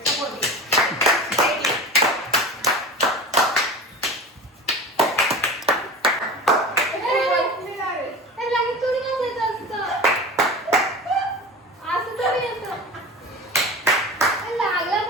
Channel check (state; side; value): normal; both; correlation 0.33